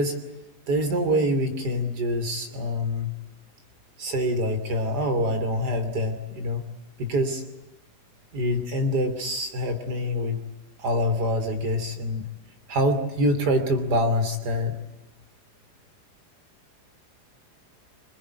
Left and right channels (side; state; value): left; late; 4.9 ms